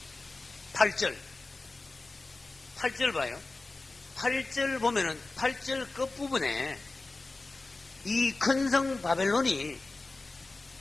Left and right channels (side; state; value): right; quieter; 3.3 dB